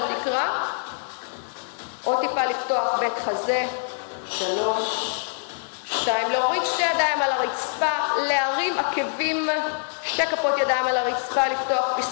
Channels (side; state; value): right; silent; digital silence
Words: התקרה, עוד טיפה לפתוח בית חזה. 3, 2, להוריד שתי ידיים על הרצפה, להרים עקבים, 2 כפות ידיים על הרצפה, לפתוח